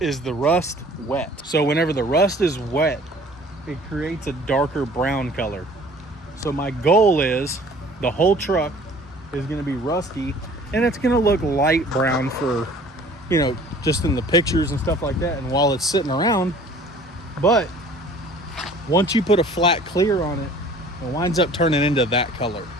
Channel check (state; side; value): normal; both; correlation 0.50